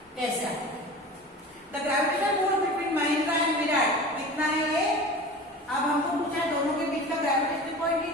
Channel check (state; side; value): normal; both; correlation 0.36